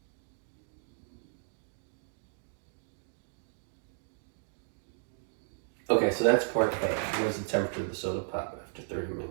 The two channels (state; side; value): silent; left; digital silence